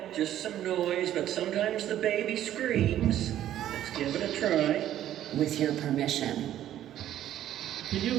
just some noise, but sometimes the baby screams. Let's give it a try. With your permission. Can you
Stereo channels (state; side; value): quieter; left; 12.0 dB